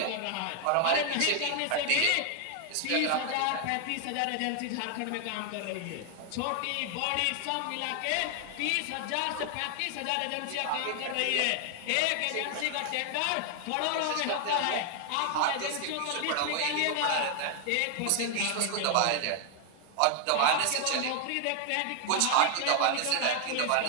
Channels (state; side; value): different; both; correlation 0.00